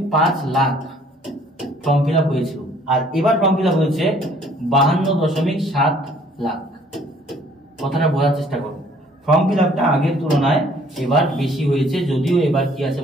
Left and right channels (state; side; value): normal; both; correlation 0.58